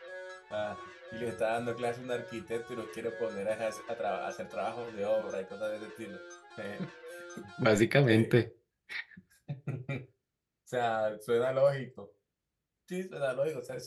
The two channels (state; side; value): identical; both; correlation 1.00